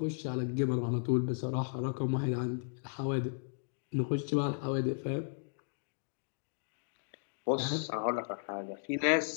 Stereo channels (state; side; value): silent; right; digital silence